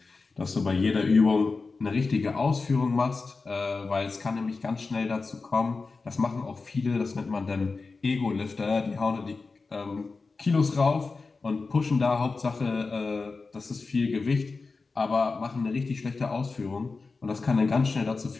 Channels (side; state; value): right; quieter; 4.1 dB